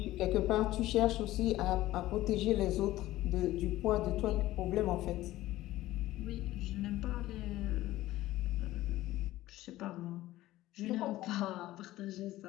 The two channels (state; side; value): quieter; right; 16.0 dB